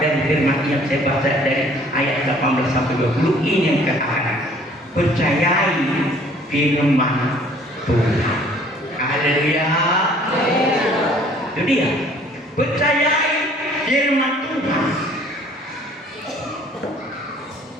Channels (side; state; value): both; normal; correlation 0.56